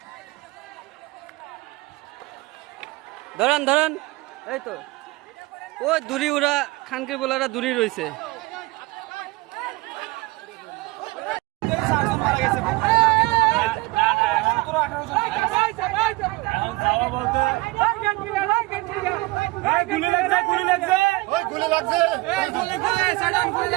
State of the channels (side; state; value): left; quieter; 22.3 dB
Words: ধরান এই তো ও দূরি ওরা খানকির বলারা দূরি রয়েছে।